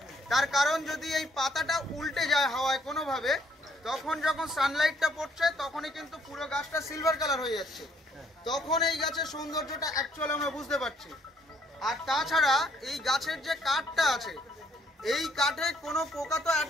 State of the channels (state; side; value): normal; both; correlation 0.66